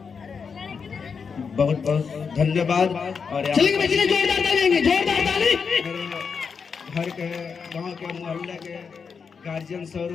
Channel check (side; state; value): right; quieter; 5.8 dB